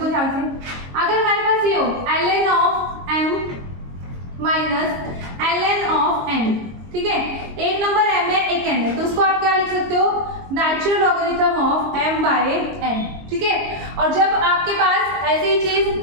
ध्यान से, अगर हमारे पास ये हो ln of m minus ln of n, ठीक है, एक नंबर m है, एक n है, तो उसको आप क्या लिख सकते हो, नेचुरल लॉगरिथम ऑफ m/n। ठीक है, और जब आपके पास ऐसी ही चीज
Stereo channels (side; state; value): left; late; 22 ms